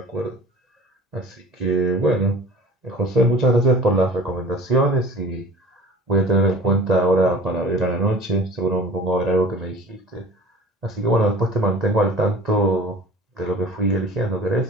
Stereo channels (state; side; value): normal; both; correlation 0.43